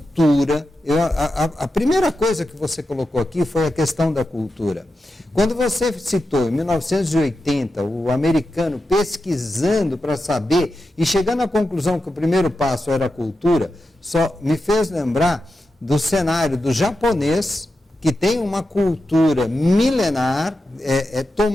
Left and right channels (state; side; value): normal; both; correlation 0.90